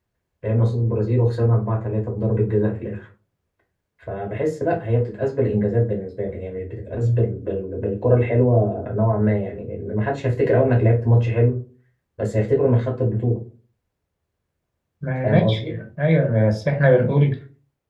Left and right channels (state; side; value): identical; both; correlation 1.00